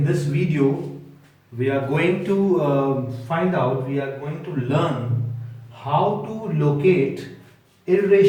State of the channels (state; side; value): identical; both; correlation 1.00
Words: this video we are going to we are going to learn how to locate